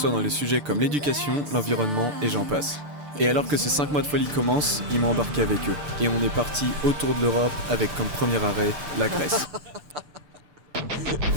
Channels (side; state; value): left; late; 6.8 ms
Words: dans les sujets comme l'éducation, l'environnement et j'en passe. Et alors que ces 5 mois de folie commencent, ils m'ont embarqué avec eux. Et on est parti autour de l'Europe avec comme premier arrêt la Grèce.